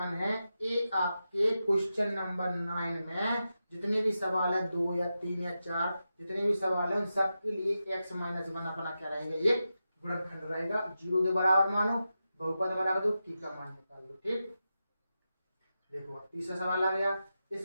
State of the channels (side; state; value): both; inverted; correlation -0.90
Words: है ये आपके क्वेश्चन नंबर 9 में जितने भी सवाल है 2 या 3 या 4 जितने भी सवाल है उन सब के लिए x-1 अपना क्या रहेगा, ये गुणनखंड रहेगा। 0 के बराबर मानो, बहुपद बना दो, की का मान निकाल दो। ठीक, देखो तीसरा सवाल आ गया,